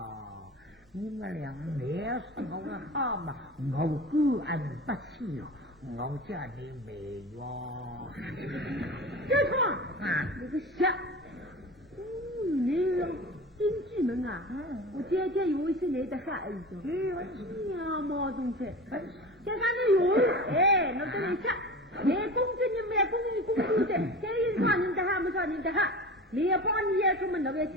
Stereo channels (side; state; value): both; normal; correlation 0.33